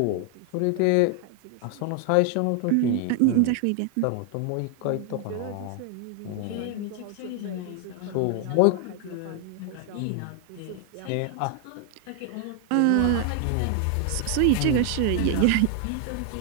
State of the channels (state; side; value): different; both; correlation 0.00